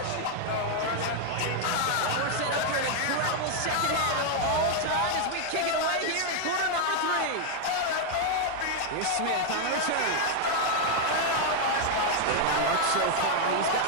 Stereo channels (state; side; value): different; both; correlation 0.00